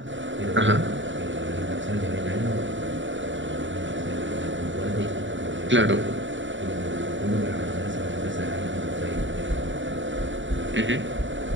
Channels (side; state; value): left; late; 0.55 ms